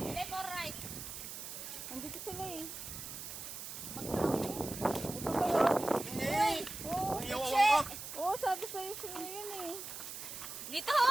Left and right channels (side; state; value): right; noise; hiss, 9 dB below the sound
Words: or right? Andito sila eh. Uy! Oo, Ang iyawawan ka. oo, sabi sa'yo sila yun eh. Dito!